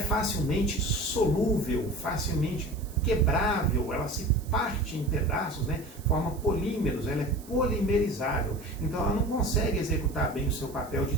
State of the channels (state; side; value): noise; right; hiss, 21 dB below the sound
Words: solúvel, facilmente quebrável, ela se parte em pedaços, né? Forma polímeros, ela é polimerizável. Então ela não consegue executar bem o seu papel de